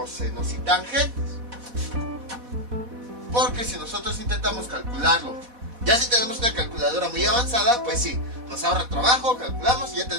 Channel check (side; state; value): left; late; 4.1 ms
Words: y tangentes. Porque si nosotros intentamos calcularlo, ya si tenemos una calculadora muy avanzada, pues sí, nos ahorra trabajo, calculamos y ya